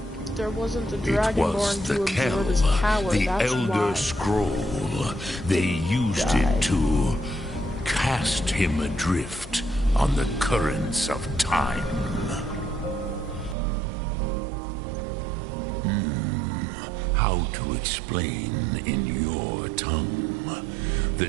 There wasn't a It dragonborn was the to absorb Kel, his power, the that's Elder why. Scroll. They used it to cast him adrift on the currents of time. How to explain in your tongue?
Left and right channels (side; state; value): left; drops out; at 13.6 s